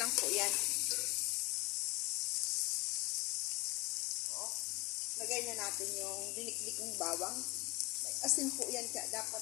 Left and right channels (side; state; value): right; quieter; 23.6 dB